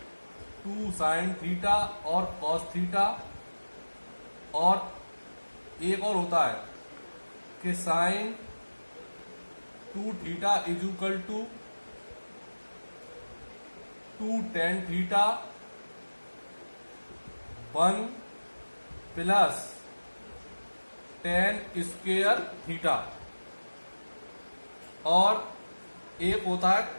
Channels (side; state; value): both; inverted; correlation -1.00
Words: 2 साइन थीटा और कॉस थीटा, और एक और होता है कि sine 2 theta is equal to 2 tan theta 1 plus tan square theta. और एक होता है